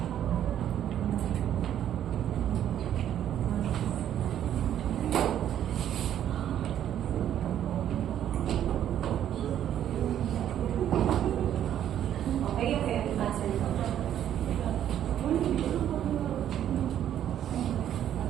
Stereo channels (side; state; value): left; quieter; 10.6 dB